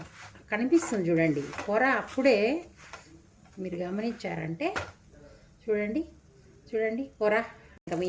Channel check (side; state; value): both; identical; correlation 1.00